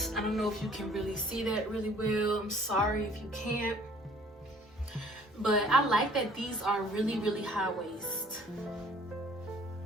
I don't know if you can really see that really well. I'm sorry if you can't. But I like that these are really, really high waist.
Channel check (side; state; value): both; normal; correlation 0.55